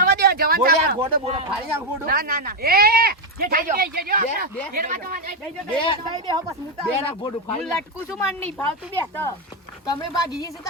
દે જવાન બોલે સાહેબ ગોડો બોલે ફાડી નાખ ગોડો ના ના ના એ જે થઈ ગયો બે બે હો બસ મુતા બે નાખ ગોડો હું ફાડી નાખ. લટકું છું માન નહીં ભાવતું બે તો તમે ભાગી જશે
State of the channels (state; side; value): normal; both; correlation 0.05